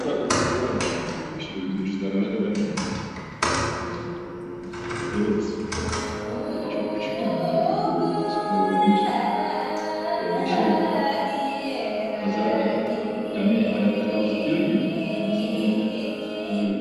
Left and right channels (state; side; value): identical; both; correlation 1.00